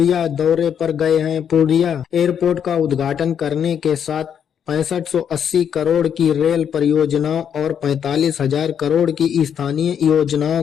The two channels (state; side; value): quieter; right; 8.3 dB